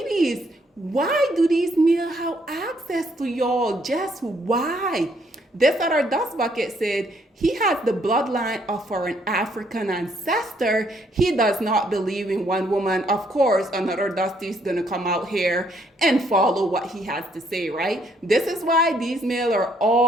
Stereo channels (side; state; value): both; normal; correlation 0.69